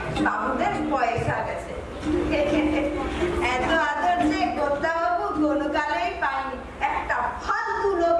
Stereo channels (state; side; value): identical; both; correlation 1.00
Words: বাবুদের পয়সা গেছে। এত আদর যে গোদ্দাবাবু কোনো কালেই পায়নি, একটা ফালতু লোক